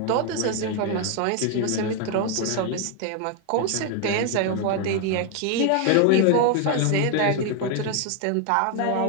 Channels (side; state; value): both; different; correlation 0.01